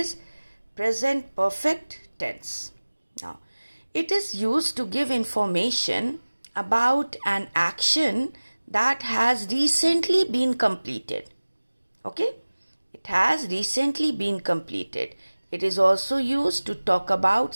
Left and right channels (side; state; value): both; inverted; correlation -1.00